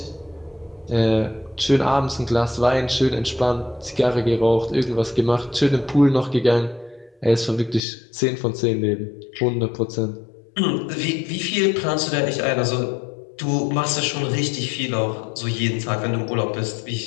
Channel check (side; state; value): right; drops out; at 7.8 s